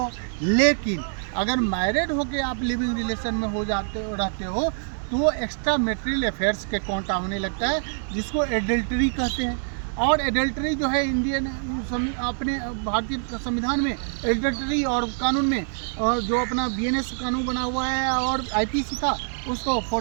लेकिन अगर मैरिड होकर आप लिविंग रिलेशन में हो जाते हो रहते हो तो वो एक्स्ट्रा मैरिटल अफेयर्स के काउंट होने लगता है, जिसको एडल्टरी कहते हैं। और एडल्टरी जो है इंडियन अपने भारतीय संविधान में एडल्टरी और कानून में जो अपना बीएनएस कानून बना हुआ है और आईपीसी था उसको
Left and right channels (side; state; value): left; silent; 62 dB below the other